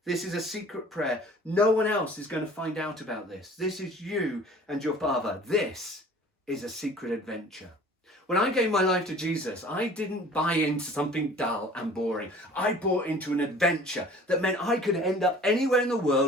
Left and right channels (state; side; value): normal; both; correlation 0.47